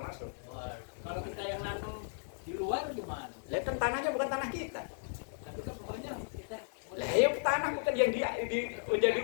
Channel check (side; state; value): right; silent; 54 dB below the other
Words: Kalau kita yang nanam di luar gimana? Lah kan tanahnya bukan tanah kita. Tapi kan pokoknya kita Lah ya tanah bukan yang menjadi